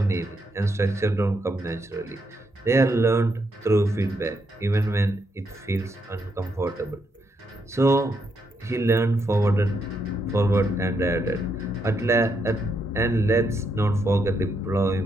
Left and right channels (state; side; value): normal; both; correlation 0.79